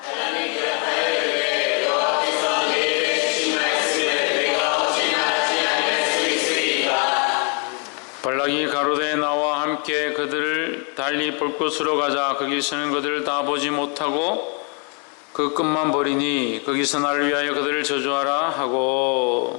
발락이 가로되 나와 함께 그들을 달리 볼 곳으로 가자. 거기서는 그들을 다 보지 못하고 그 끝만 보리니 거기서 나를 위하여 그들을 저주하라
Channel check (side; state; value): right; quieter; 37.0 dB